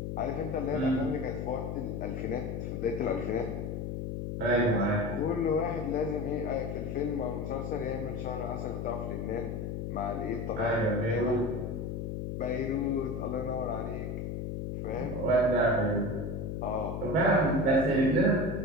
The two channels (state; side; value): noise; left; hum, 4 dB below the sound